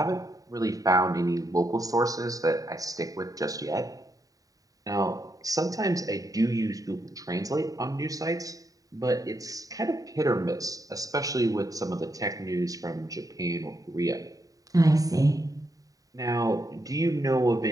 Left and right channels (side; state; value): left; late; 0.17 ms